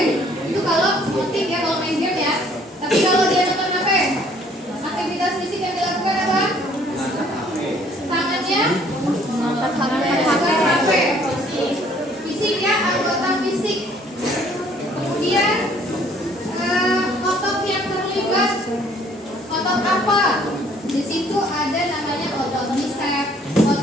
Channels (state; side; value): normal; both; correlation 0.60